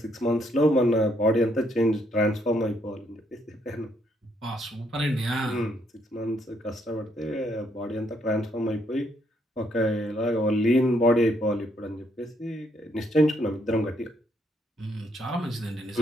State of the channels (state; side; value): normal; both; correlation 0.73